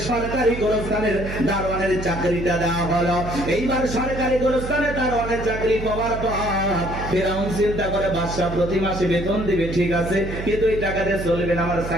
সরকারি গোরস্থানের দারোয়ানের চাকরিটা দেওয়া হলো। এইবার সরকারি গোরস্থানের দারোয়ানের চাকরি পাওয়ার পর ফেরাউন চিন্তা করে বাদশা প্রতি মাসে বেতন দিবে, ঠিক আছে, কিন্তু এই টাকা দিয়ে চলবে না, আমার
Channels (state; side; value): noise; right; hum, 7 dB below the sound